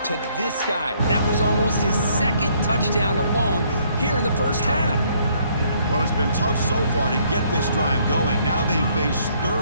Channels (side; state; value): both; inverted; correlation -0.66